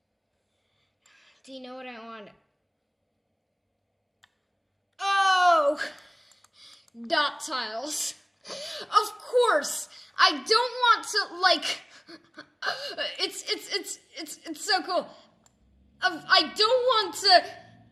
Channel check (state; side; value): identical; both; correlation 1.00